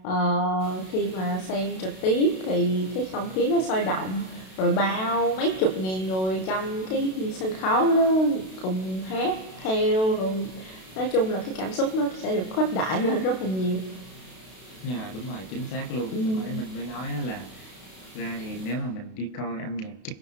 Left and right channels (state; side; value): late; right; 32 ms